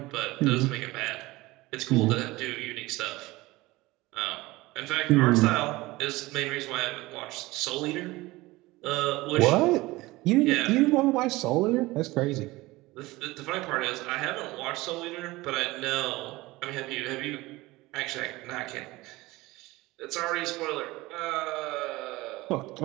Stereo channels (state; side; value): quieter; left; 20.2 dB